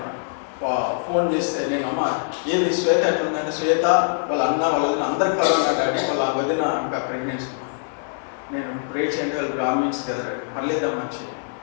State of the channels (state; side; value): silent; right; 55 dB below the other